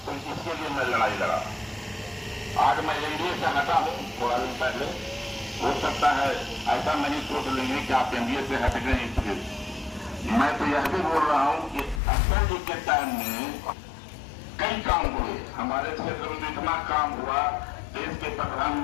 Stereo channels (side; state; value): right; drops out; at 12.0 s